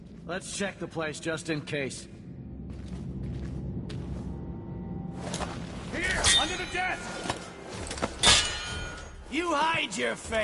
Let's check the place just in case. Here, under the desk! You hide your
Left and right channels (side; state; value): both; identical; correlation 1.00